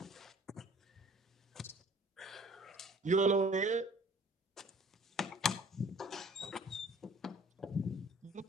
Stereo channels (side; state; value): both; normal; correlation 0.51